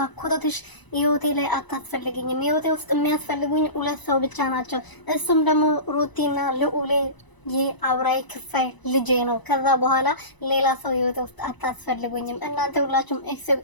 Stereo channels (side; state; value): right; late; 1.0 ms